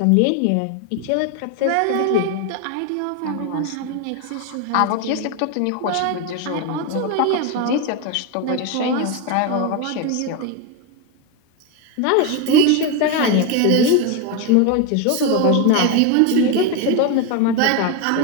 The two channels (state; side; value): different; both; correlation 0.02